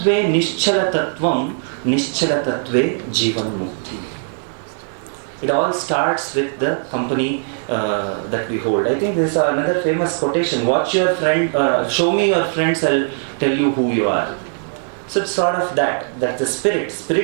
nischalatatvam, nischalatatve jivan mukti. It all starts with the company that we hold. I think this is another famous quotation. Watch your friend, show me your friends, I'll tell you who you are. So it's sort of that the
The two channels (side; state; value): left; silent; digital silence